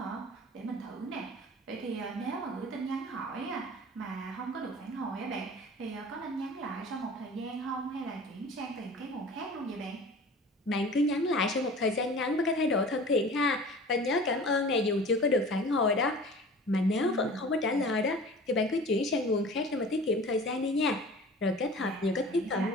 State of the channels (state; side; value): normal; both; correlation 0.41